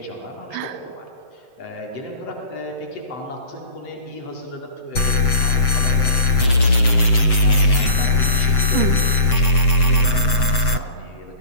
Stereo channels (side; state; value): right; late; 7.8 ms